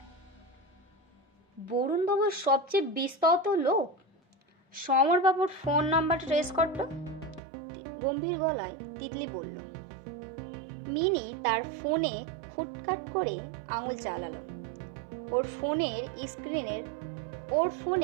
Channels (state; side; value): drops out; left; at 7.4 s